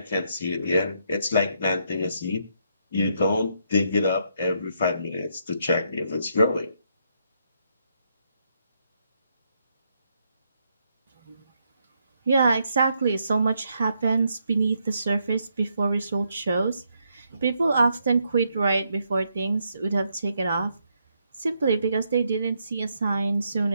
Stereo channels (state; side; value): inverted; both; correlation -0.77